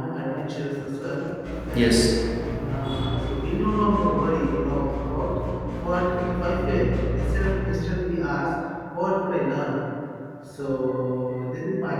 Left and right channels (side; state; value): both; identical; correlation 1.00